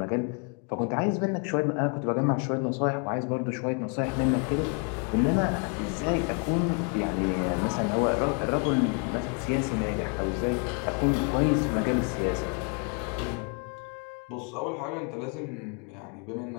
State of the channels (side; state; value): right; quieter; 36.8 dB